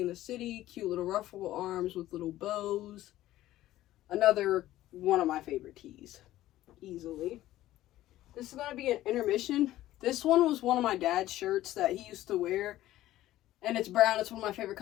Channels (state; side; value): quieter; right; 14.8 dB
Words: the city. Cute little ruffle arms with little bows. Another one of my favorite tees. Easily. This is going to be an intermission. This one was one of my dad's shirts that he used to wear. And it's brown. It's one of my favorite